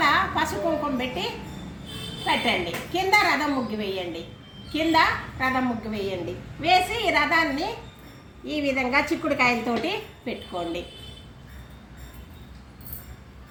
పసుపు కుంకుమ పెట్టి పెట్టండి. కింద రథం ముగ్గు వేయండి. వేసి ఈ రథాన్ని ఈ విధంగా చిక్కుడుకాయలతోటి పెట్టుకోండి.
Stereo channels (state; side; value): identical; both; correlation 1.00